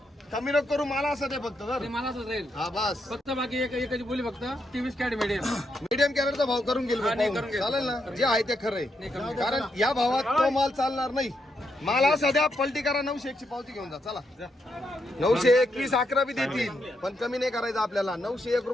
कमी नको करू. मला असं ते फक्त जर मला असंच राहील हा बस. फक्त बाकी एकच बोली फक्त 23 कॅरेट मीडियम. मीडियम कॅरेटचा भाव करून गेलो. चालेल ना? जे आहे ते खरं आहे. कारण या भावात तो माल चालणार नाही. मला सध्या पलटी करा. 901 ची पावती घेऊन जा. चला 921 11 बी देतील पण कमी नाही करायचं आपल्याला. 901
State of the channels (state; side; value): normal; both; correlation 0.80